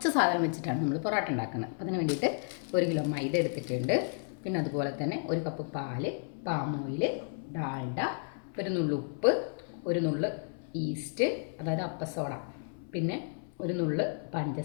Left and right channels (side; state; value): right; silent; 56 dB below the other